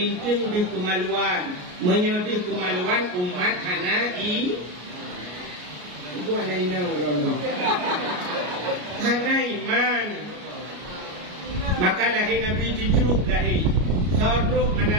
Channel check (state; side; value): late; left; 33 ms